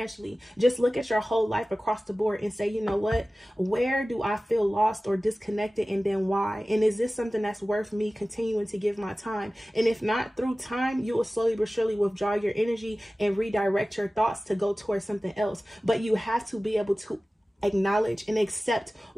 Just look at your whole life across the board and say, you know what, where do I feel lost or disconnected, and then why? And is this something that's worth me continuing to give my time? And if not, through time, you will slowly but surely withdraw your energy and redirect your thoughts to go towards something else. But you have to be able to acknowledge and accept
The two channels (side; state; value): both; normal; correlation 0.97